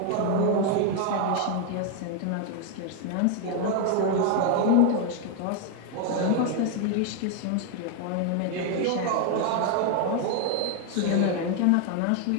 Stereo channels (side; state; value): both; different; correlation 0.01